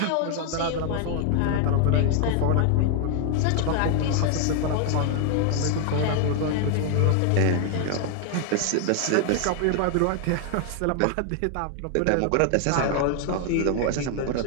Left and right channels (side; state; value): both; different; correlation 0.00